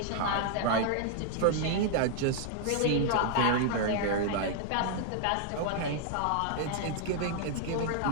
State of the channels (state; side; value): different; both; correlation 0.00